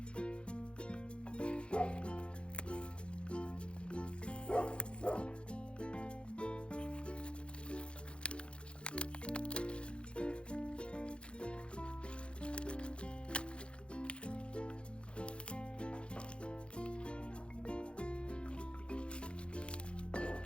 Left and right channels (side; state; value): right; late; 0.057 ms